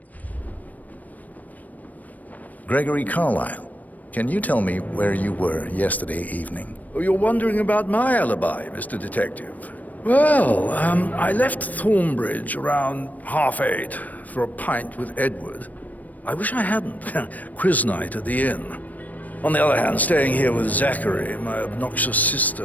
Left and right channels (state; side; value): late; right; 0.077 ms